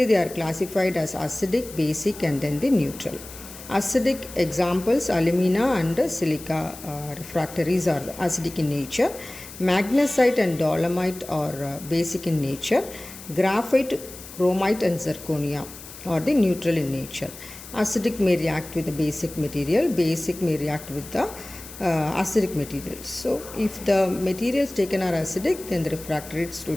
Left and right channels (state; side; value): noise; left; hiss, 15 dB below the sound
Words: they are classified as acidic, basic and then the neutral. Acidic examples: alumina and silica refractories are acidic in nature. Magnesite and dolomite are basic in nature. Graphite, chromite and zirconia are the neutral in nature. Acidic may react with the basic material, basic may react with the acidic materials. So if the materials taken are acidic, then the refractories